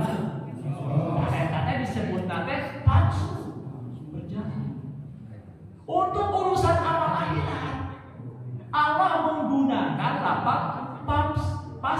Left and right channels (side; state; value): both; identical; correlation 1.00